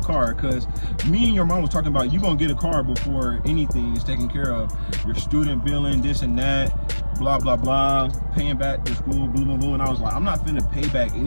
car, because me and your mom was talking about you gonna get a car before anything is taken care of. Your student billing, this and that, blah blah blah, paying back the school, blah blah blah. And I was like, I'm not finna pay back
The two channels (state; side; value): inverted; both; correlation -1.00